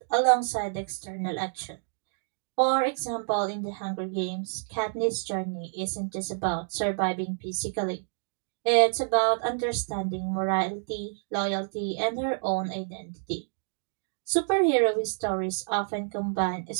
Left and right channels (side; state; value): left; silent; digital silence